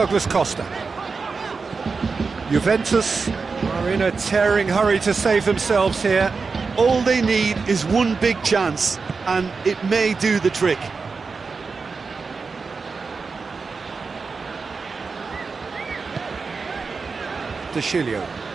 Costa. Juventus are in a tearing hurry to save themselves here. All they need is one big chance, and it may do the trick. De Chilio.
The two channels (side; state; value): left; quieter; 4.7 dB